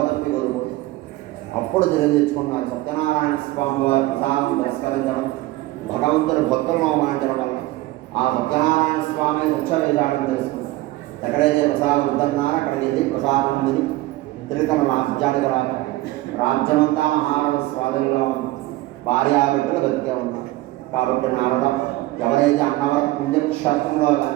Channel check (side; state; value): left; quieter; 18.3 dB